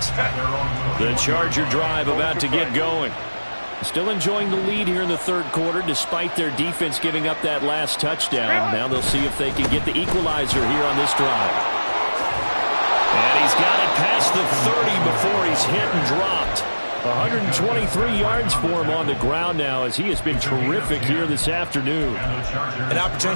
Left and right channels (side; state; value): both; inverted; correlation -1.00